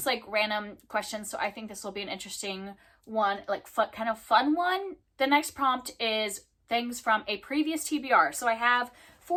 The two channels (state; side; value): identical; both; correlation 1.00